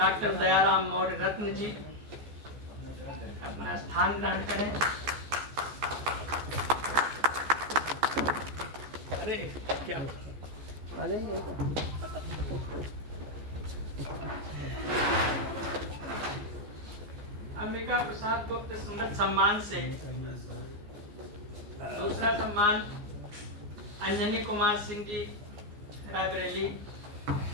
दयाराम मौर्य रत्न जी अपना स्थान ग्रहण करें। अरे क्या आ जाइए। अंबिका प्रसाद गुप्त स्मृति सम्मान से दूसरा सम्मान अंजनी कुमार सिंह जी रायबरेली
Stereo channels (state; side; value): late; left; 14 ms